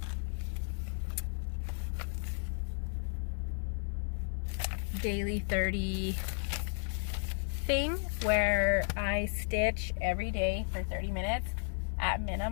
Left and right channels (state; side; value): silent; right; digital silence